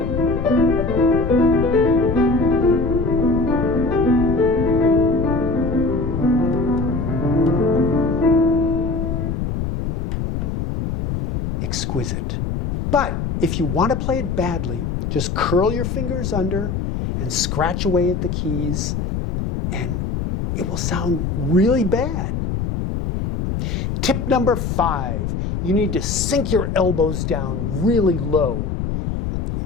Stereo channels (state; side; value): noise; left; rumble, 2 dB below the sound